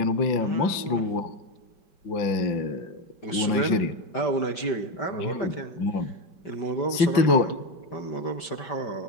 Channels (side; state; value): right; late; 5.1 ms